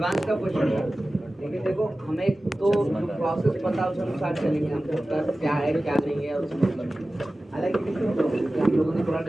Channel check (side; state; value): both; normal; correlation 0.96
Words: का क्वेश्चन है। लेकिन देखो हमें तो प्रोसेस पता उस अनुसार चलेंगे। हमको कर क्या है क्या नहीं है उसमें मतलब नहीं। हालांकि हम लोगों ने थोड़ा